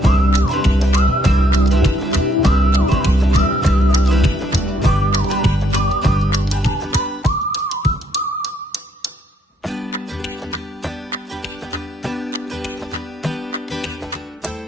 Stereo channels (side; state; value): both; normal; correlation 0.71